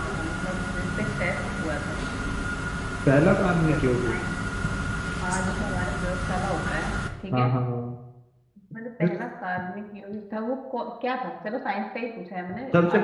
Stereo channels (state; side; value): identical; both; correlation 1.00